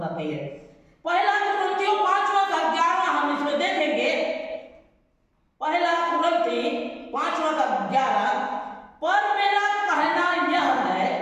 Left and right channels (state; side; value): identical; both; correlation 1.00